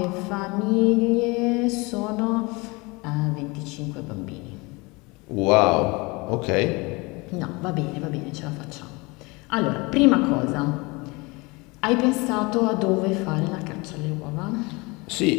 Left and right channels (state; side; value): quieter; right; 25.8 dB